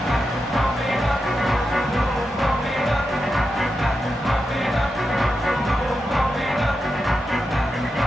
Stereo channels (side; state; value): both; normal; correlation 0.88